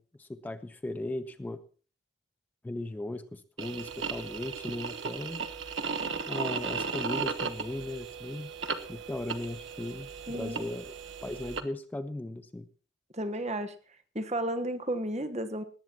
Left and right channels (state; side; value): normal; both; correlation 0.41